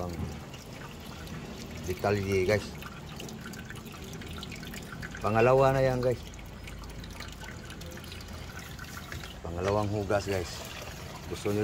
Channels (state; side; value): identical; both; correlation 1.00